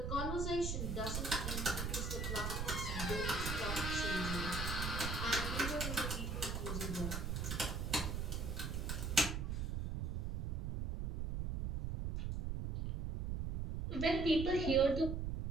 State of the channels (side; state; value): right; noise; rumble, 1 dB below the sound